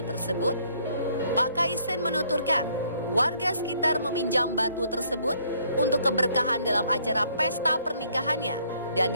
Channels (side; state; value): both; inverted; correlation -0.65